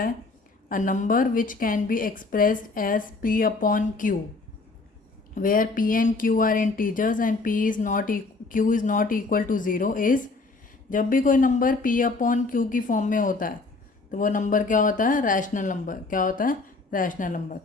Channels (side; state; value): right; quieter; 3.6 dB